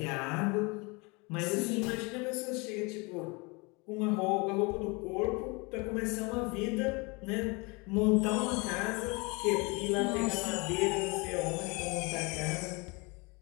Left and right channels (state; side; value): quieter; right; 28.2 dB